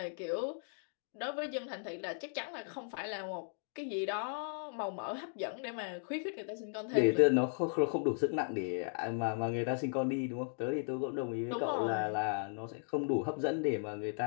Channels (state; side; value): silent; right; digital silence